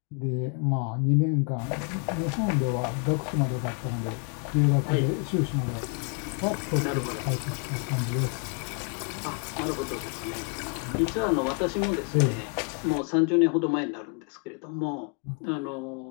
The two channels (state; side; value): quieter; right; 36.0 dB